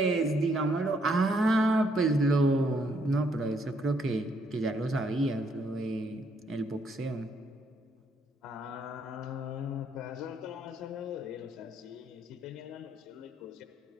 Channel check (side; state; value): both; normal; correlation 0.71